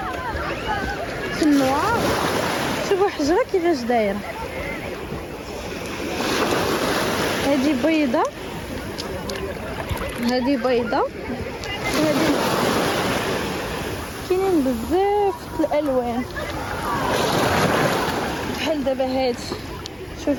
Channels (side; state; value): both; identical; correlation 1.00